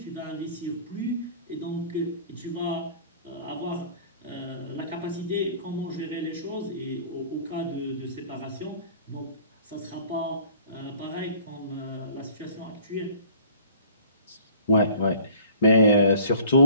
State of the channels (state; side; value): inverted; both; correlation -0.51